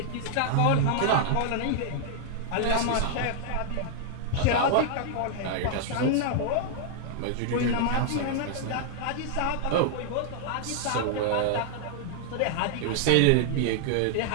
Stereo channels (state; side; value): different; both; correlation -0.01